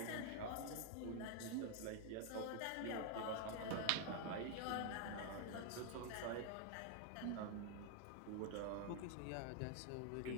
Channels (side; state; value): both; different; correlation 0.00